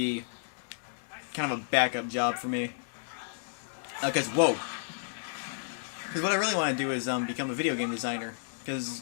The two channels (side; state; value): right; silent; digital silence